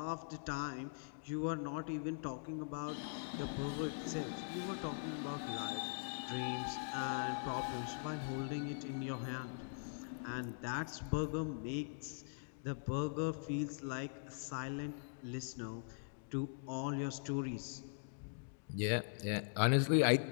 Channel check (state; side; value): silent; right; digital silence